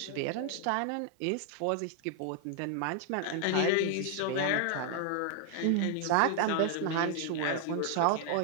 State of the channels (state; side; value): different; both; correlation 0.00